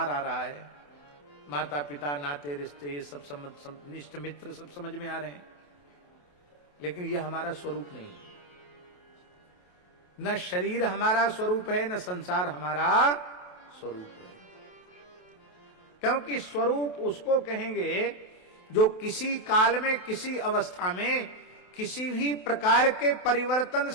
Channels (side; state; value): right; late; 28 ms